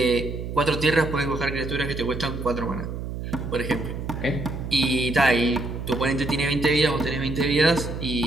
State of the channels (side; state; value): right; noise; hum, 6 dB below the sound